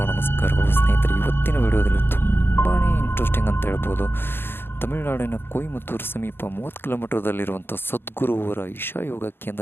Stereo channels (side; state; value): right; late; 0.10 ms